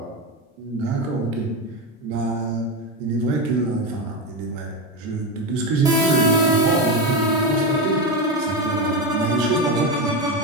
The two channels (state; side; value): normal; both; correlation 0.14